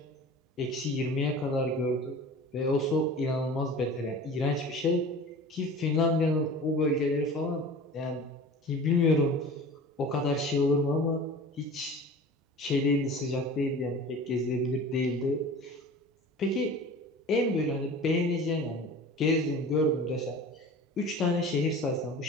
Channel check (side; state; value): both; normal; correlation 0.39